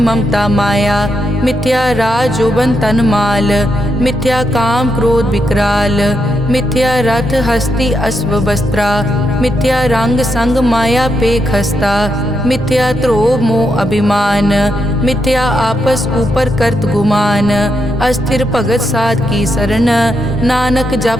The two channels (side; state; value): both; normal; correlation 0.82